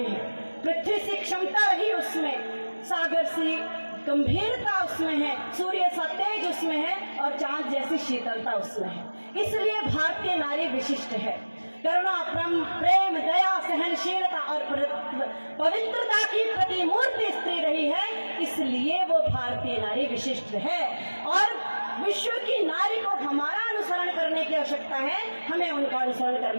हैं। पृथ्वी सी क्षमता रही उसमें, सागर सी गंभीरता उसमें है, सूर्य सा तेज उसमें है और चांद जैसी शीतलता उसमें है। इसलिए भारतीय नारी विशिष्ट है। करुणा, प्रेम, दया, सहनशीलता और पवित्रता की प्रतिमूर्ति स्त्री रही है, इसलिए वो भारतीय नारी विशिष्ट है। और विश्व की नारी को हमारा अनुसरण करने की आवश्यकता है, हमें उनका अनुसरण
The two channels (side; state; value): both; inverted; correlation -1.00